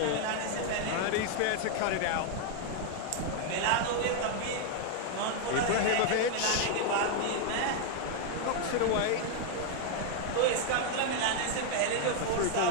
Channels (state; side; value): different; both; correlation 0.00